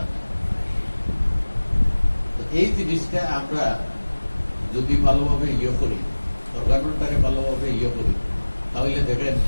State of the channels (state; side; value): inverted; both; correlation -1.00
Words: না। এই জিনিসটা আমরা যদি ভালোভাবে ইয়ে করি, অর্গানটারে ভালোভাবে ইয়ে করি, তাহলে দেখেন